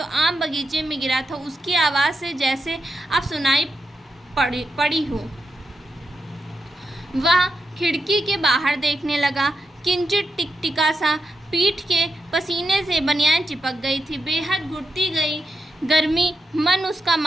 आम बगीचे में गिरा था उसकी आवाज़ से जैसे अब सुनाई पड़ी हो। वह खिड़की के बाहर देखने लगा। किंचित टिकटिका सा पीठ के पसीने से बनियान चिपक गई थी। बेहद घुटती गई गर्मी मन उसका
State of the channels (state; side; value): normal; both; correlation 0.86